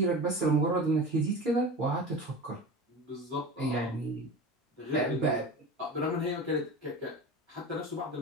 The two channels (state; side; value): normal; both; correlation 0.31